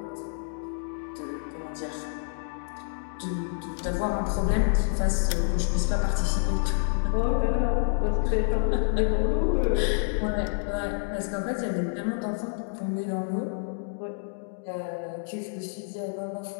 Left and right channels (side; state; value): right; silent; digital silence